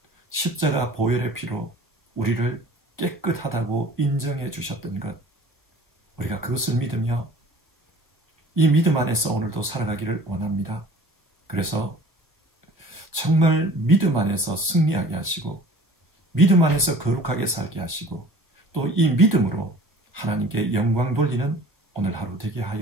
십자가 보혈의 피로 우리를 깨끗하다고 인정해 주셨던 것, 우리가 그것을 믿으며 이 믿음 안에서 오늘도 살아가기를 원합니다. 그래서 정말 믿음 안에서 승리하게 하시고 믿음 안에서 거룩하게 살게 하시고 또 이 믿음으로 하나님께 영광 돌리는 오늘 하루 되게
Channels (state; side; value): normal; both; correlation 0.46